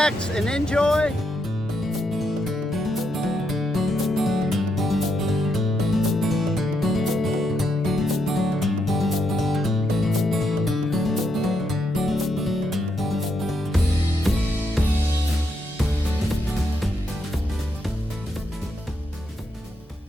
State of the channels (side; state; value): both; normal; correlation 0.79